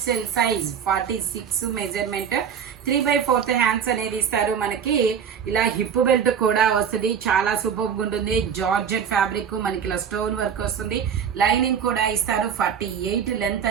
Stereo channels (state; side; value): quieter; left; 7.6 dB